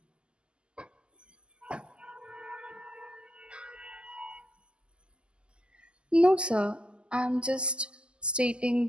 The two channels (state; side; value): late; left; 0.051 ms